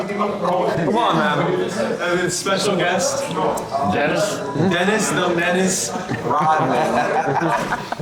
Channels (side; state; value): both; identical; correlation 1.00